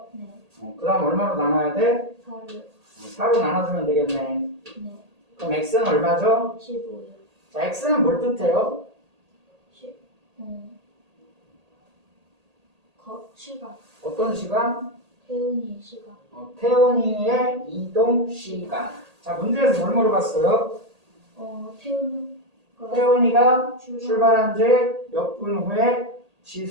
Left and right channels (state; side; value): late; left; 1.8 ms